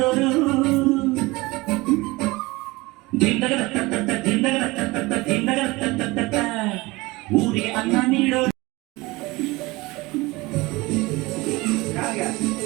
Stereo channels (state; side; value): quieter; left; 22.2 dB